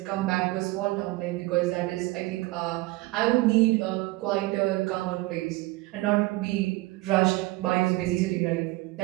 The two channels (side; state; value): left; quieter; 20.6 dB